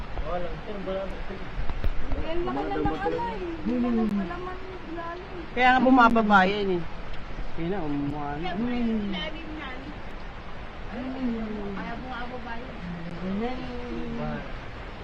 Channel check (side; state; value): both; identical; correlation 1.00